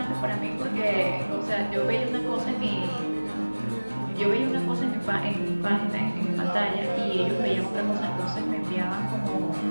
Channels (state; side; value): inverted; both; correlation -1.00